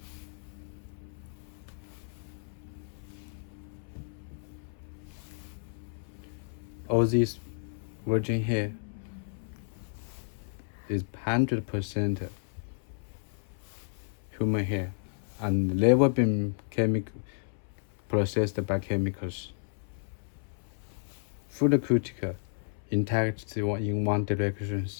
All this virgin hair is 100% human hair and never been processed by chemicals. Full cuticle, intact in one direction,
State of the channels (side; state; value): right; silent; 56 dB below the other